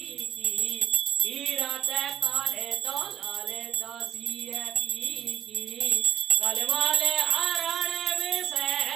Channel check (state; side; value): quieter; left; 10.4 dB